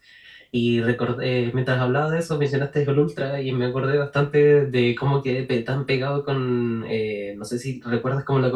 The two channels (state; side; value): identical; both; correlation 1.00